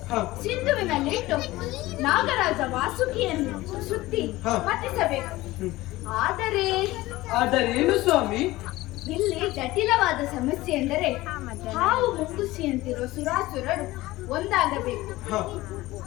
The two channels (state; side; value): quieter; right; 18.4 dB